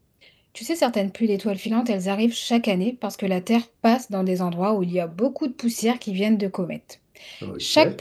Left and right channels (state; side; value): identical; both; correlation 1.00